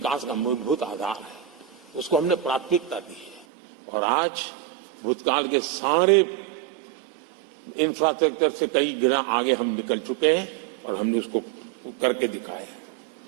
का मूलभूत आधार है, उसको हमने प्राथमिकता दी है। और आज भूतकाल के सारे इंफ्रास्ट्रक्चर से कई गुना आगे हम निकल चुके हैं और हमने उसको करके दिखाए हैं।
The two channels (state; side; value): drops out; left; at 3.5 s